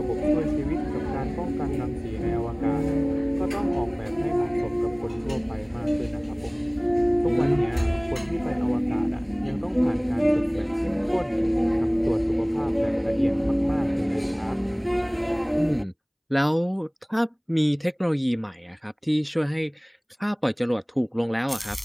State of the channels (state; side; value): identical; both; correlation 1.00